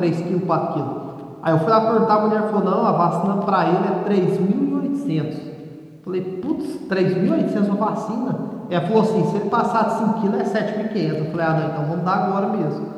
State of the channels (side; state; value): both; identical; correlation 1.00